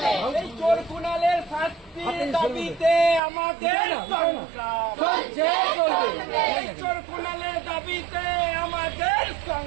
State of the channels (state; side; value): drops out; left; at 3.2 s